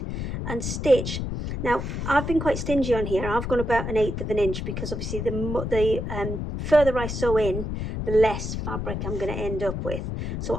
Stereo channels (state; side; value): noise; left; rumble, 4 dB below the sound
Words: and stitch. Now I've been quite stingy on here. I've gone about 1/8 of an inch because obviously the further I sew in, the less fabric I'm going to end up with. So